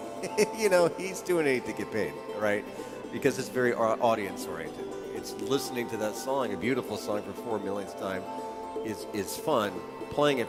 he's doing it to get paid, right? Because it's very audience-oriented. It's listening to that song, a beautiful song for 4 millionth time, is fun. Playing it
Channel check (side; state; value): both; identical; correlation 1.00